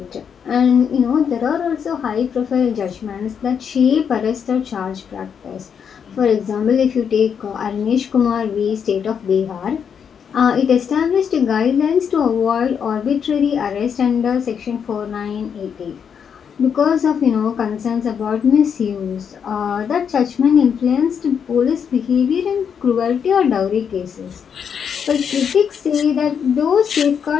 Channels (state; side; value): quieter; right; 7.3 dB